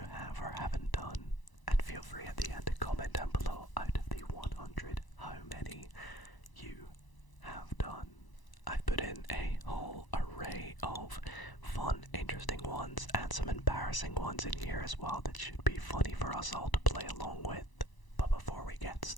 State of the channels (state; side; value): late; right; 1.0 ms